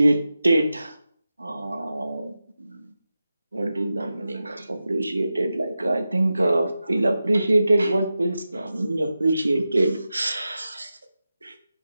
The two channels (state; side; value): inverted; both; correlation -0.92